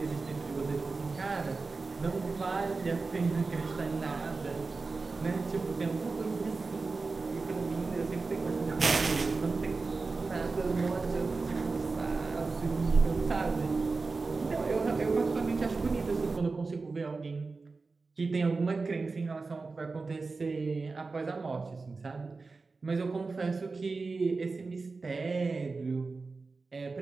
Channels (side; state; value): left; quieter; 4.0 dB